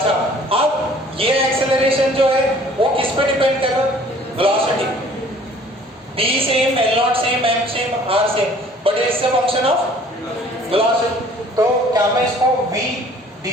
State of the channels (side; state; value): both; normal; correlation 0.54